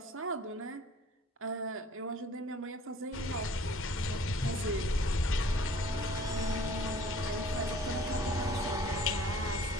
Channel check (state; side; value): normal; both; correlation 0.53